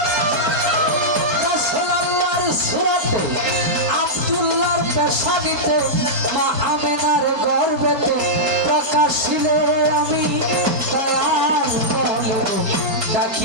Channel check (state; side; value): late; left; 3.8 ms